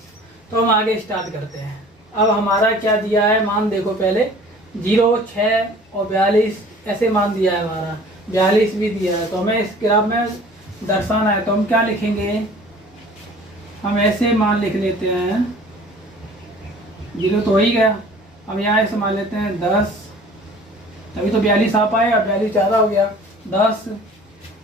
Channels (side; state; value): both; normal; correlation 0.48